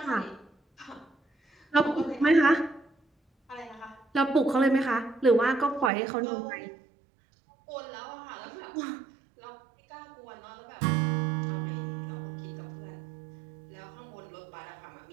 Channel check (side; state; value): left; drops out; at 5.9 s